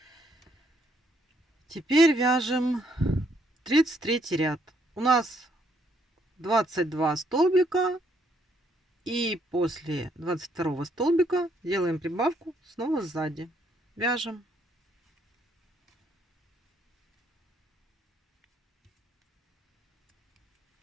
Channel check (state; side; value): normal; both; correlation 0.71